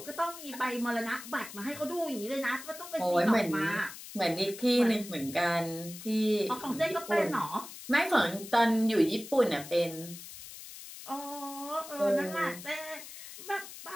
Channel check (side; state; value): left; noise; hiss, 13 dB below the sound